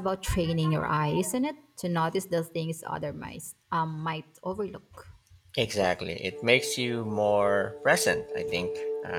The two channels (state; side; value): identical; both; correlation 1.00